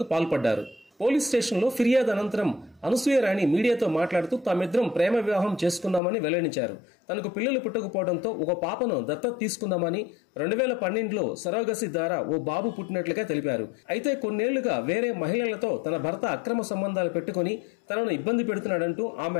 పాల్పడ్డారు. పోలీస్ స్టేషన్లో ఫిర్యాదు అనంతరం అనసూయారాణి మీడియాతో మాట్లాడుతూ తామిద్దరం ప్రేమ వివాహం చేసుకున్నామని వెల్లడించారు. తనకు పిల్లలు పుట్టకపోవడంతో ఒక పాపను దత్తత తీసుకుందామని 2012లో సరోగసి ద్వారా ఓ బాబు పుట్టినట్లుగా తెలిపారు. అయితే కొన్నేళ్లుగా వేరే మహిళలతో తన భర్త అక్రమ సంబంధాలు పెట్టుకుని తనను ఇబ్బంది పెడుతున్నాడంటూ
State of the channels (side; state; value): right; drops out; at 6.0 s